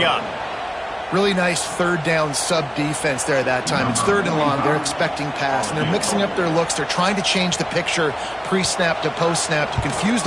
up. Really nice third down sub-defense there that time. It's third and long. They're expecting pass, and they're mixing up their looks. They're trying to change the picture pre-snap to post-snap to confuse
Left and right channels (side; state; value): both; identical; correlation 1.00